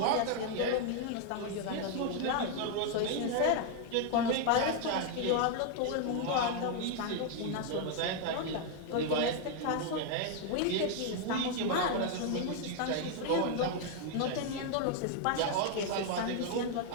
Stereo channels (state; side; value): different; both; correlation 0.00